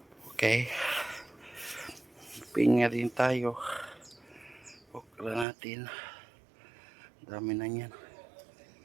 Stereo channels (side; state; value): left; drops out; at 5.5 s